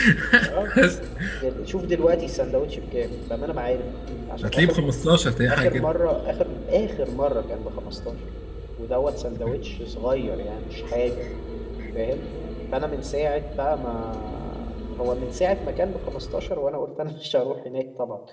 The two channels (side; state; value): both; identical; correlation 1.00